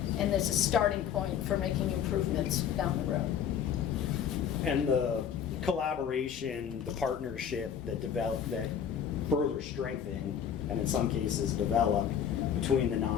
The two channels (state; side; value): quieter; right; 8.4 dB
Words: And there's a starting point for making improvements down the road. And the collaboration, the partnership that further strengthened, and in some cases developed, between the